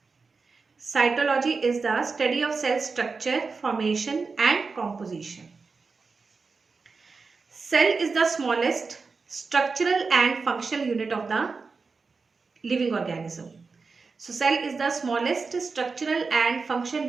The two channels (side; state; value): left; quieter; 4.5 dB